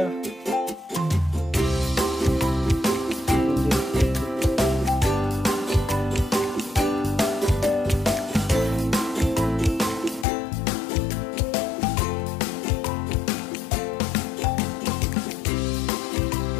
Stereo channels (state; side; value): drops out; right; at 10.2 s